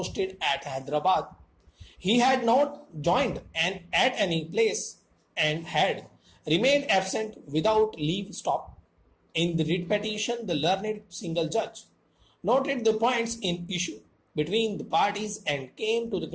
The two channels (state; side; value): identical; both; correlation 1.00